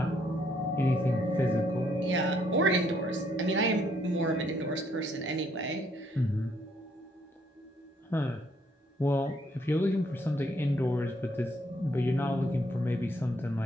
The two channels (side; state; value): both; normal; correlation 0.70